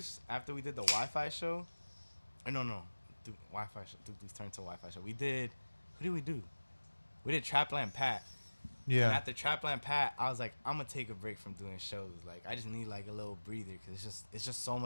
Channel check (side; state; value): both; inverted; correlation -1.00